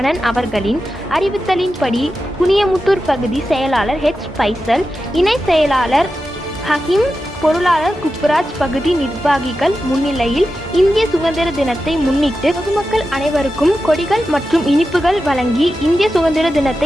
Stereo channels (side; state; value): both; normal; correlation 0.91